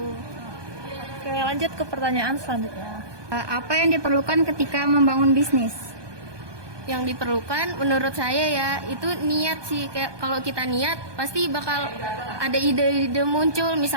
Oke, lanjut ke pertanyaan selanjutnya. Apa yang diperlukan ketika membangun bisnis? Yang diperlukan menurut saya ya itu niat sih. Kayak kalau kita niat pasti bakal ada ide-ide muncul.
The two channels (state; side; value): late; left; 1.2 ms